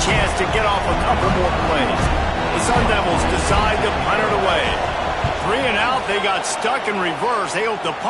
to get off a couple more plays. The Sun Devils decide to punt it away. 3 and out, they got stuck in reverse. They hope the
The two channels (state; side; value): identical; both; correlation 1.00